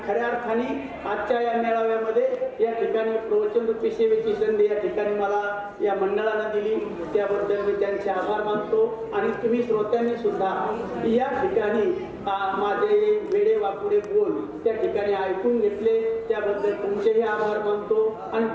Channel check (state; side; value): identical; both; correlation 1.00